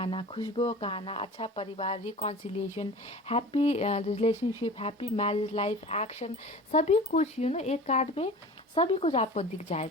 खुशबुओं का आना, अच्छा परिवार, reconciliation, happy relationship, happy marriage life, action, सभी कुछ एक कार्ड में सभी कुछ आपको दिख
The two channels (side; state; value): both; normal; correlation 0.38